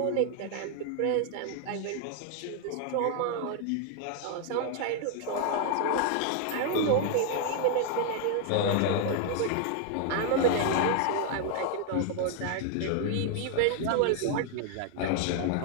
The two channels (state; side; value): different; both; correlation 0.00